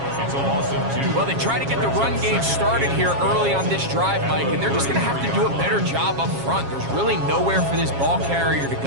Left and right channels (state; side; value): late; left; 7.3 ms